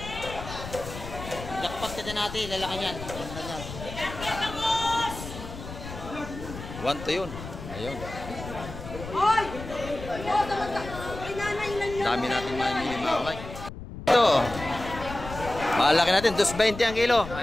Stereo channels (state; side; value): noise; left; rumble, 11 dB below the sound